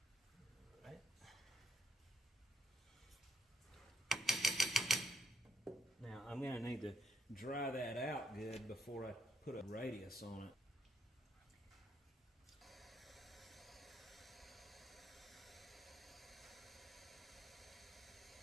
Now I'm going to need to dry that out good before I put a radius on it.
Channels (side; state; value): both; normal; correlation 0.74